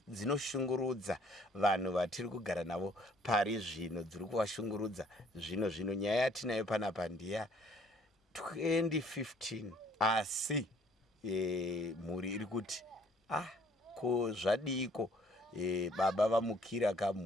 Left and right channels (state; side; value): normal; both; correlation 0.60